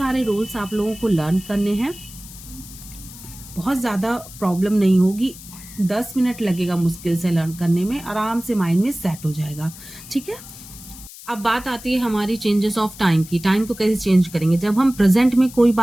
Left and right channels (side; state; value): left; noise; hiss, 16 dB below the sound